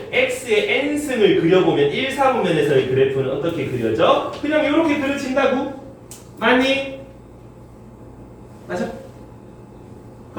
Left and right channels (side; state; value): both; identical; correlation 1.00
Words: x의 n승을 그려보면 1, 4분면에서의 그래프는 어떻게 그려져? 그냥 이렇게 그려진다고? 맞니? 맞아?